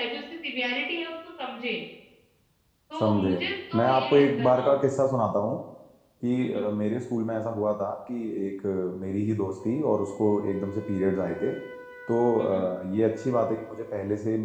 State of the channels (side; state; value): both; identical; correlation 1.00